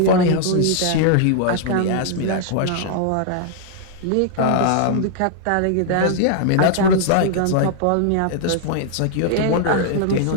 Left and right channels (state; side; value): different; both; correlation -0.01